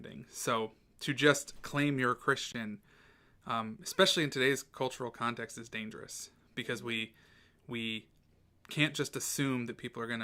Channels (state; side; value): identical; both; correlation 1.00